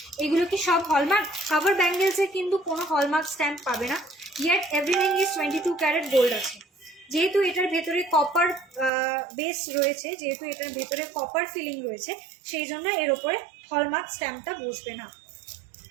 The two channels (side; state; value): left; drops out; at 8.9 s